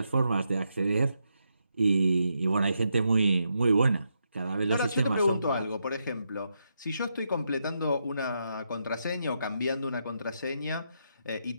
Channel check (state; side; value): inverted; both; correlation -0.82